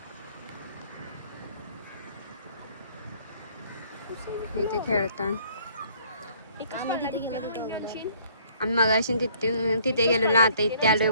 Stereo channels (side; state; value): both; inverted; correlation -0.60